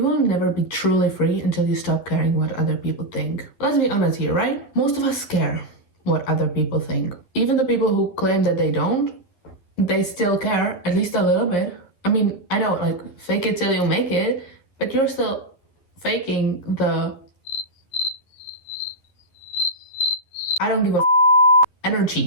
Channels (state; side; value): late; right; 11 ms